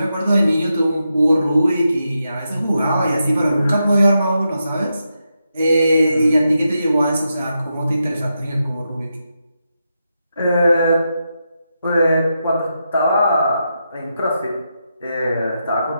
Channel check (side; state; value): both; inverted; correlation -0.86